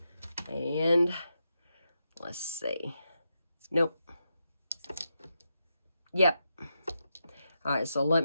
And let's see. Nope. Yep. All right, so let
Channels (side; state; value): both; inverted; correlation -0.85